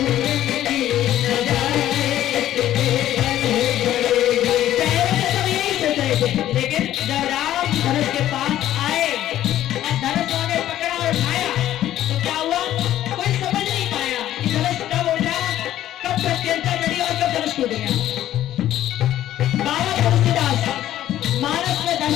लेकिन जब राम धनुष के पास आए और धनुष उन्होंने पकड़ा और उठाया तो क्या हुआ, कोई समझ नहीं पाया कि धनुष कब उठा, कब प्रत्यंता चढ़ी और कब धनुष टूट गया। बाबा तुलसीदास मानस में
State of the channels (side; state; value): right; quieter; 12.7 dB